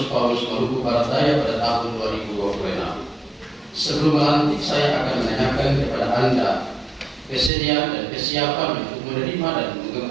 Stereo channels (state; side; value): drops out; left; at 7.5 s